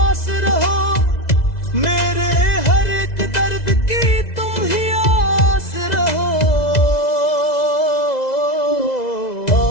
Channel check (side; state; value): right; late; 2.0 ms